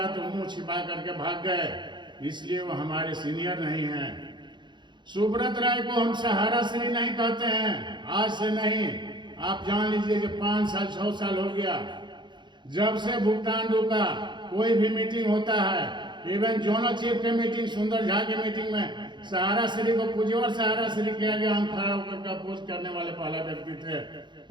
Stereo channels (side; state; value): left; late; 0.22 ms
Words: तो मुंह छिपा करके भाग गए, इसलिए वो हमारे सीनियर नहीं हैं। सुब्रत राय को हम सहारा श्री नहीं कहते हैं, आज से नहीं, आप जान लीजिए कि 5 साल 6 साल हो गया जब से भुगतान रुका। कोई भी मीटिंग होता है, इवन जोनल चीफ के मीटिंग, सुंदर झा के मीटिंग में सहारा श्री को पूज्यवर सहारा श्री किया गया। हम खड़ा होकर का पोस्ट करने वाले पहला व्यक्ति थे।